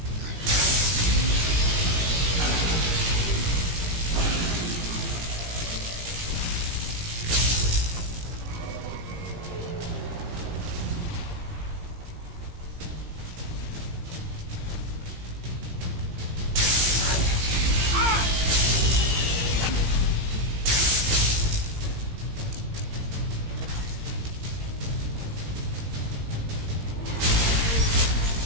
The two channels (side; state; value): left; late; 17 ms